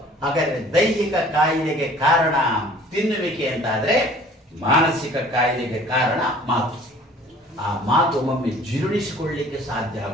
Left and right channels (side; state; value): both; normal; correlation 0.51